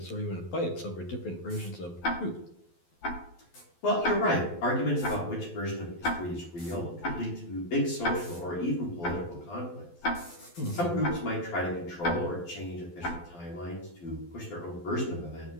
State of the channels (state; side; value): late; right; 12 ms